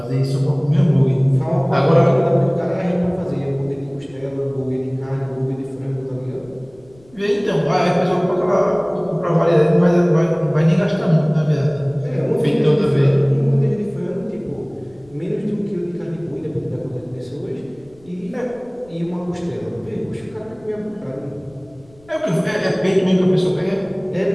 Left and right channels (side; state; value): left; noise; rumble, 27 dB below the sound